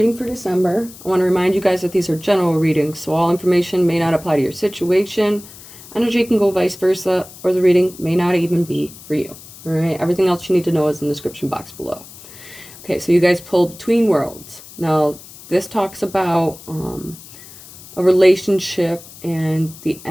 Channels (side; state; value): left; noise; hiss, 18 dB below the sound